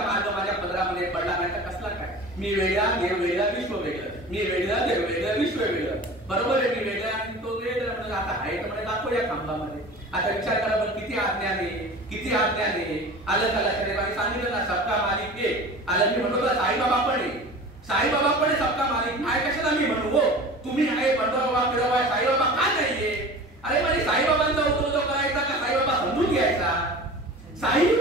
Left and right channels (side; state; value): both; normal; correlation 0.38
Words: मार्ग माझ्या पदरामध्ये पडला. नाही तर कसला काय, मी वेगळा देव वेगळा विश्व वेगळं, मी वेगळा देव वेगळं विश्व वेगळं. बरोबर आहे, मी वेगळा आणि तो वेगळा. म्हणजे आता आहे तर म्हणजे दाखवूया खांबामध्ये. आता विचार करा पण किती आज्ञाने, किती आज्ञाने. आलं का लक्षात? सांगितलं ना सबका मालिक एक. आलं मी म्हणतो साईबाबा पण आहे, साईबाबा पण आहे सबका मालिक. नाही कशाला मी म्हणू हो, तुम्ही आहे बंडोबा फिरवा, साईबाबा का नाहीये? अरे म्हणजे साईबाबांचा उद्योग करायचा का साईबाबा समजून घ्यायचा?